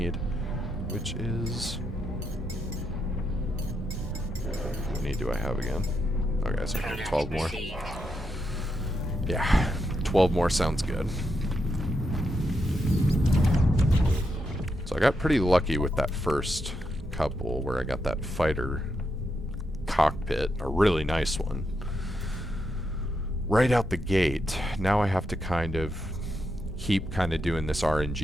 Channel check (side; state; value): both; normal; correlation 0.82